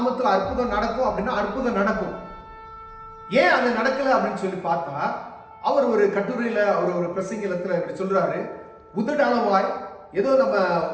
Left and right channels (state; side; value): identical; both; correlation 1.00